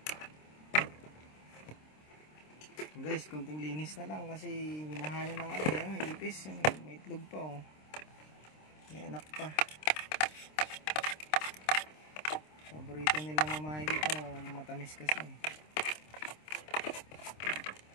Guys, konting linis na lang kasi minahaya ng ano yung ipis. May itlog pa oh. May anak pa. Paborito nila mamahay dito, matamis kasi.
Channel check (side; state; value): right; late; 26 ms